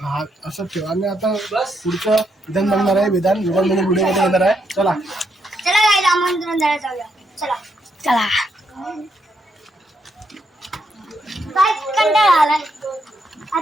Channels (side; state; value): both; normal; correlation 0.78